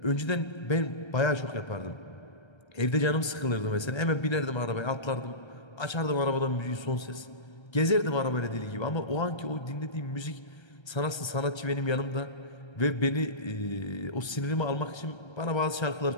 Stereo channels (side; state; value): right; late; 1.3 ms